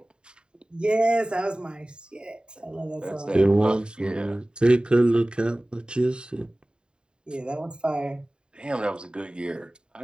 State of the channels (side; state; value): left; late; 0.050 ms